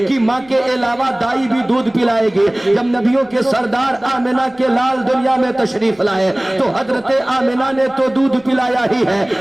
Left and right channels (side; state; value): left; noise; rumble, 29 dB below the sound